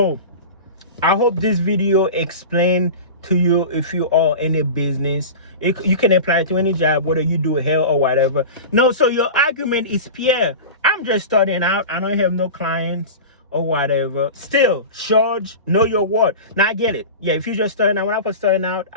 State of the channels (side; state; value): both; inverted; correlation -0.30